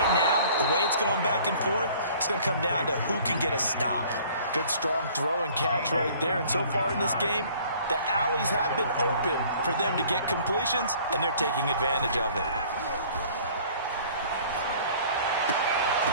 now, the way it's going back and forth, it's going to come down to who can get a stop. Good, strong throw and catch right there. And so far in this game, the alleys have been open for them to get completions, and they're taking advantage of it.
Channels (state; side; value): inverted; both; correlation -0.52